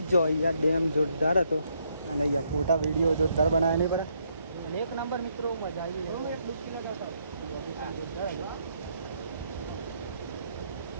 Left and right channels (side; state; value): both; inverted; correlation -0.74